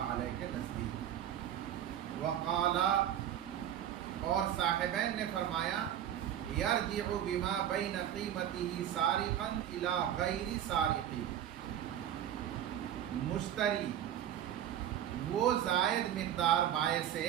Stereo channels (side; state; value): left; quieter; 10.7 dB